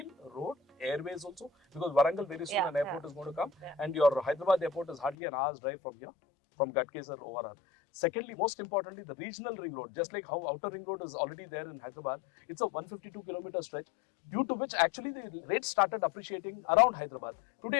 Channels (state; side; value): drops out; right; at 5.2 s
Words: road, airways also, because Warangal very soon an airport is going to come and your Hyderabad airport is hardly an hour's drive from here, from Gadkesar ORR. Secondly, most importantly, the regional ring road, just like how outer ring road is already there in Hyderabad, it's a 152 kilometer stretch, due to which actually the rates started appreciating around Hyderabad. Today,